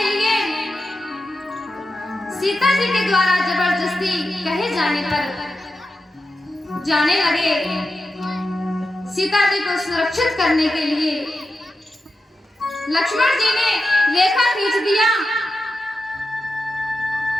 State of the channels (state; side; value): normal; both; correlation 0.90